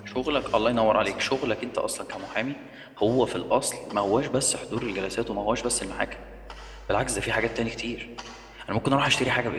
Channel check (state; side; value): identical; both; correlation 1.00